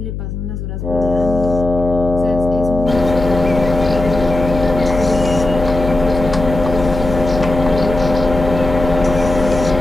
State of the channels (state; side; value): noise; left; hum, 7 dB below the sound